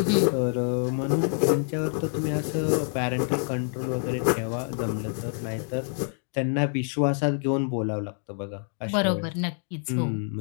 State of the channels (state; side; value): silent; right; 58 dB below the other